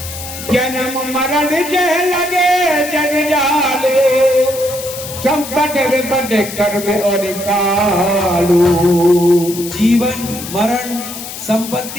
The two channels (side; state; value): left; noise; hiss, 10 dB below the sound